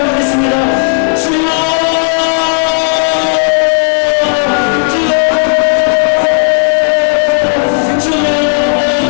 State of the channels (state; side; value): silent; right; digital silence